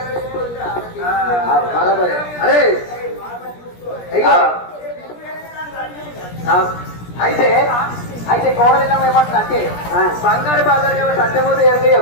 బరాబర్. అరే అయితే అయితే కోడలిల్లం ఏమంటుంది అంటే బంగారు బాధలు సత్యమూర్తి ఎరక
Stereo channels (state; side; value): late; right; 17 ms